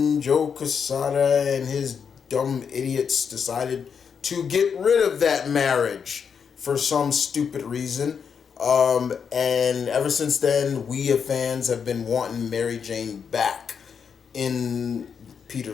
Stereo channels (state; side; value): quieter; right; 6.7 dB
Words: Joe Quesada and his dumb idiots decided to get rid of that marriage for some stupid reason. And ever since then, we as fans have been wanting Mary Jane back in